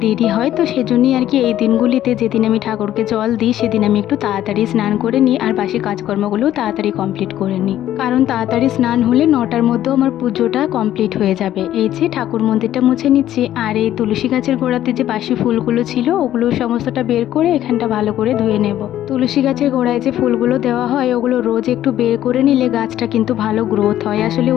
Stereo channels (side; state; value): right; quieter; 12.4 dB